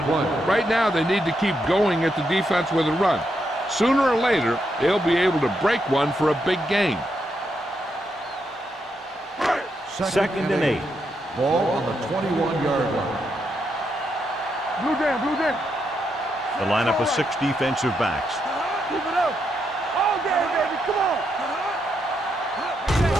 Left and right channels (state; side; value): normal; both; correlation 0.81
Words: Right now, they need to keep going at the defense with a run. Sooner or later, they'll be able to break one for a big gain. Second and 8. Ball on the 21-yard line. Blue jam, blue jam. The lineup of 6 defensive backs. Keep it up. All day, baby. Come on.